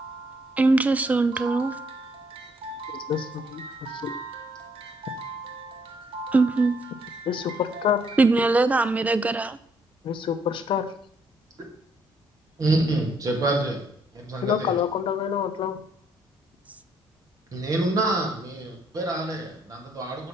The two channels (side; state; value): both; normal; correlation 0.69